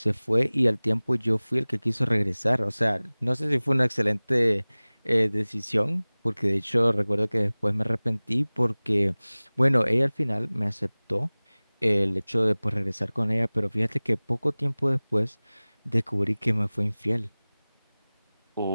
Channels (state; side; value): inverted; both; correlation -1.00